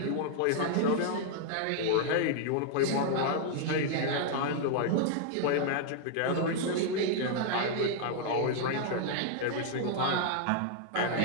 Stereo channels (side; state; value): both; different; correlation -0.01